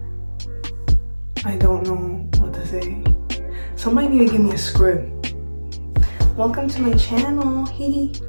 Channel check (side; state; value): both; inverted; correlation -1.00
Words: I don't know what to say. Somebody need to give me a script. Welcome to my channel. Hee.